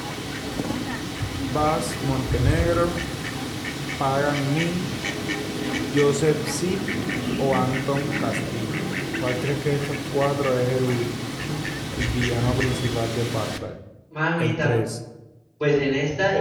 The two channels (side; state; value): both; identical; correlation 1.00